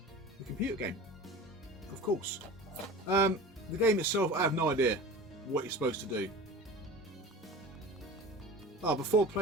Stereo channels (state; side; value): normal; both; correlation 0.36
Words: the computer game, of course. The game itself, I have no idea what you're supposed to do. Before